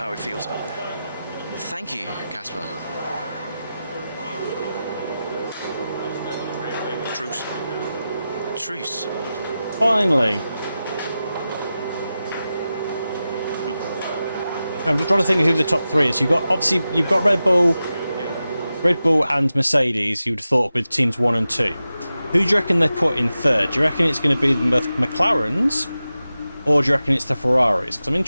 it feels out there. Thank you, Casper. Truce. Truce. Finally. I'm just trying to think who the top three is. Obviously you've got Red Bull and Mercedes. You would have thought with teams 1 and 2. Who do you reckon they put in third? Do you reckon it's going to be the McLarens, or do you reckon it's the Ferraris? Because I'm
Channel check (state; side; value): inverted; both; correlation -0.93